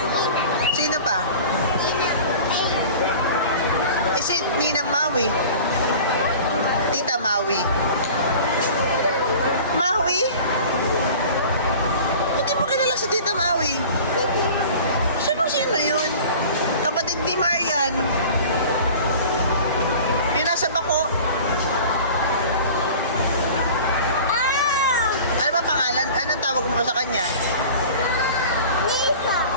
Sino pa? Ninang. Ay. Si Ninang Maui. Tita Maui. Maui? Hindi mo kilala si Tita Maui? Sino yun? Kapatid ni Marian. Yung nasa bako. Ano ba pangalan? Anong tawag mo sa kanya? Lisa.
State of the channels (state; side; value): inverted; both; correlation -0.41